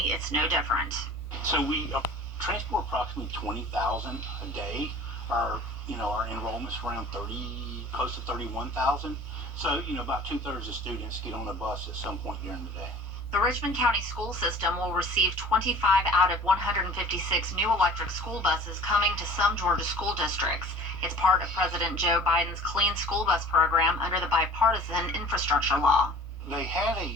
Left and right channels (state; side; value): normal; both; correlation 0.44